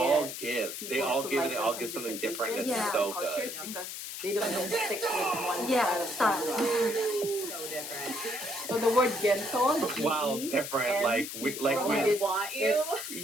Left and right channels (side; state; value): left; noise; hiss, 7 dB below the sound